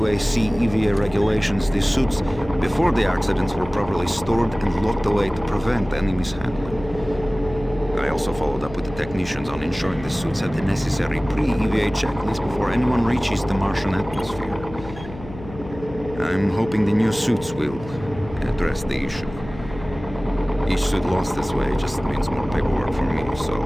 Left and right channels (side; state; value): left; noise; hum, 14 dB below the sound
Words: EVA regulations, the suits before the accidents were properly stored and locked away to prevent any mishandling. I also followed up with the technicians on ensuring the suits had the necessary pre-EVA checklist before anyone reaches the Martian atmosphere. I'm hoping the new suits will address the issue. Each suit lost this way just means more paperwork for me, so...